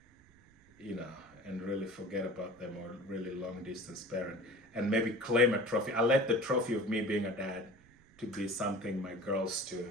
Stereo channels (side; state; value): right; noise; rumble, 27 dB below the sound